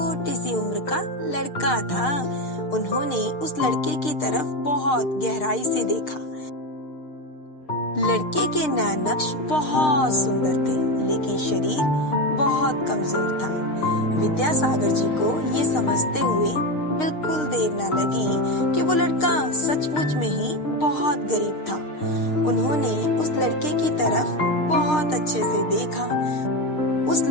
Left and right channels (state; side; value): late; right; 6.6 ms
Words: सी उम्र का लड़का था। उन्होंने उस लड़के की तरफ बहुत गहराई से देखा। लड़के के नैन नक्श बहुत सुंदर थे, लेकिन शरीर बहुत कमजोर था। विद्यासागर जी को ये समझते हुए बिल्कुल देर न लगी कि वो लड़का सचमुच में ही बहुत गरीब था। उन्होंने उस लड़के की तरफ बहुत अच्छे से देखा। उस